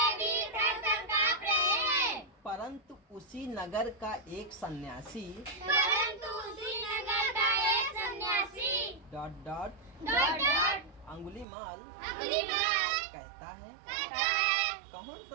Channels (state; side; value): drops out; left; at 11.5 s